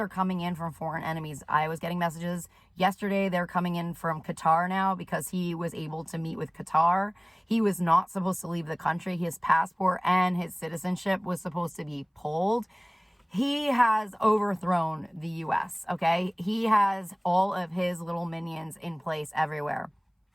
are coming in from foreign enemies. I was getting messages yesterday. They're coming in from Qatar now because he was able to meet with Qatar. He was not supposed to leave the country. His passport and his citizenship was supposed to be pulled. He has overthrown the U.S., okay? He has all of his little minions in place everywhere.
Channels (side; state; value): both; identical; correlation 1.00